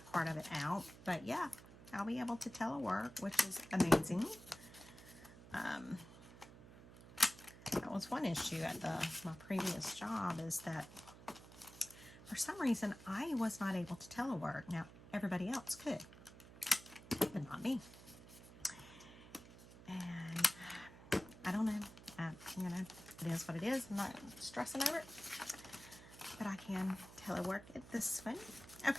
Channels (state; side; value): noise; right; hum, 18 dB below the sound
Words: part of it out, but yeah, I'll be able to telework, which is amazing. That was one issue at my previous job, is that for some reason I was not able to telework. Now everybody else could, but not me. And I don't know. You know, it is what it is. I'm not stressing over it, but I can telework at this one.